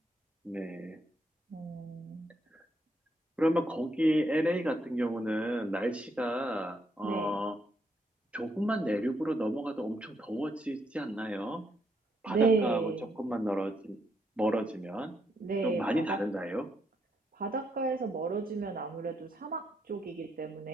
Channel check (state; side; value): normal; both; correlation 0.76